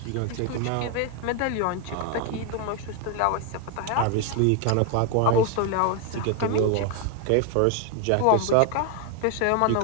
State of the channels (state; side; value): different; both; correlation 0.01